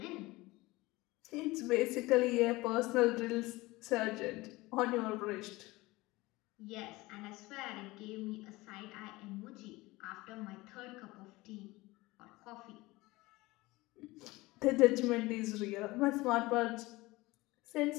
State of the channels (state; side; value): quieter; right; 20.7 dB